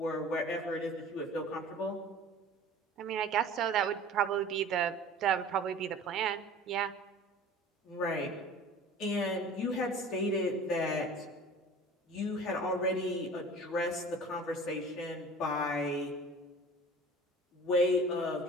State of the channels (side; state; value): both; normal; correlation 0.42